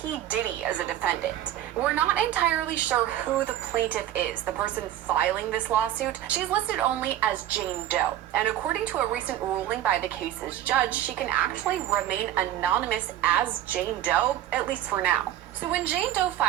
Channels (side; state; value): left; quieter; 12.4 dB